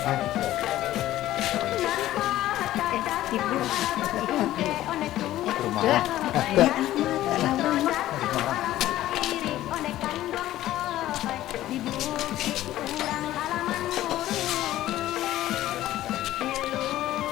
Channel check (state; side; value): quieter; right; 14.3 dB